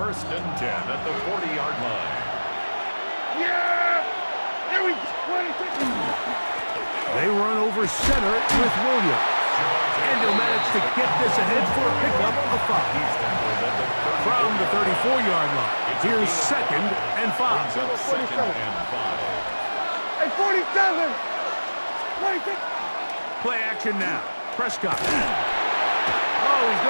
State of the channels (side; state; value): both; inverted; correlation -1.00